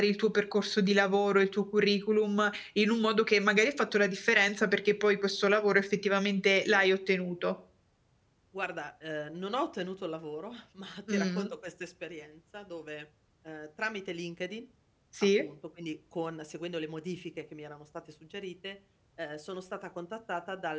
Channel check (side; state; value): both; identical; correlation 1.00